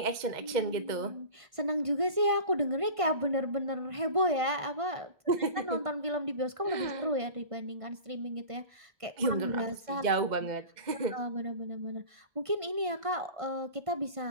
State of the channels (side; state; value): left; late; 1.5 ms